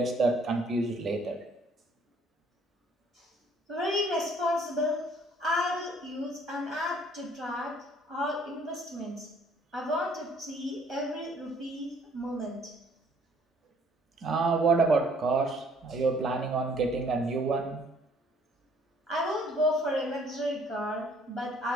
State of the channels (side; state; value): both; normal; correlation 0.60